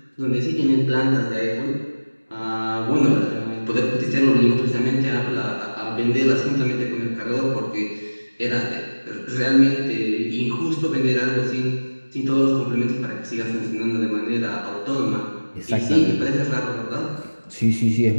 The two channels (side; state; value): both; inverted; correlation -1.00